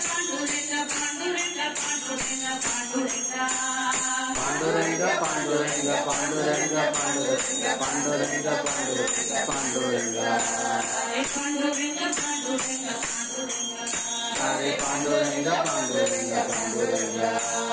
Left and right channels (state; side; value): identical; both; correlation 1.00